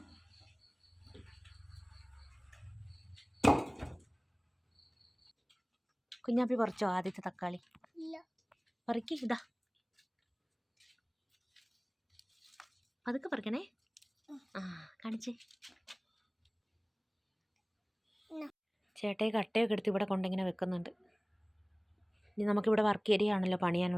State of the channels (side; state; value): both; identical; correlation 1.00